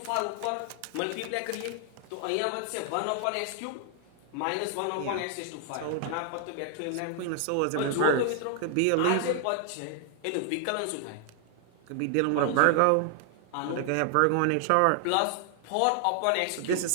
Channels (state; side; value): different; both; correlation 0.00